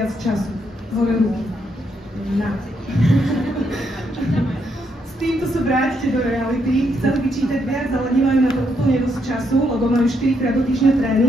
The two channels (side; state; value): both; normal; correlation 0.77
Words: času? Hore ruky. Na. S týmto sa vrátite do reality. Chceli by čítať viac, ale nemajú na to úplne dosť času, lebo majú 4-krát do týždňa